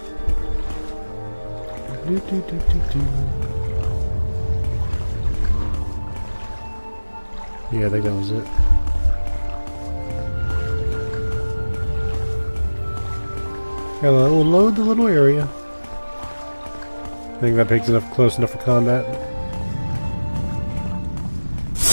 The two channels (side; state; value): both; inverted; correlation -1.00